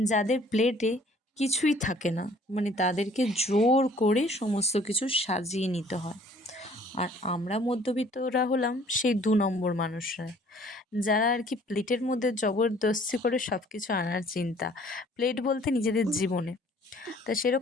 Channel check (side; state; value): both; normal; correlation 0.56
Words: যাদের প্লেটে কিছুই থাকে না, মানে তাদেরকে জোর করে সমস্ত কিছু সাজিয়ে নিতে হয়। আর আমরা মধ্যবিত্তরা হলাম সেই 2 নম্বর মানুষরা, যারা আর কি প্লেটের মধ্যে জবরদস্তি করে সব কিছু আনার চিন্তা। প্লেট বলতে নিজেদের জীবনে। তা